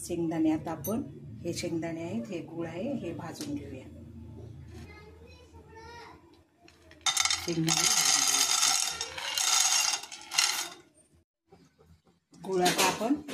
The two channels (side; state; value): both; identical; correlation 1.00